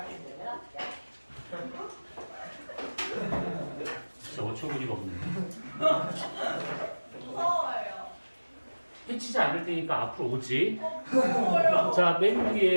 야 진짜 어처구니가 없네. 무서워요. 해치지 않을 테니까 앞으로 오지. 무서워요. 자, 맨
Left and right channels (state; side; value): inverted; both; correlation -1.00